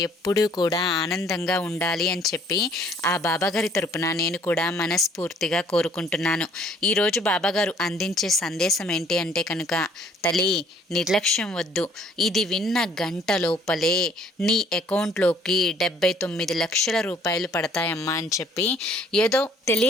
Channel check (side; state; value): both; normal; correlation 0.60